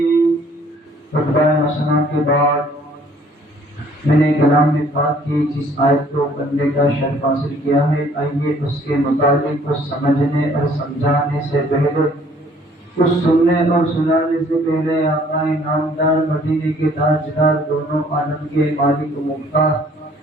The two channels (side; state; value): both; normal; correlation 0.58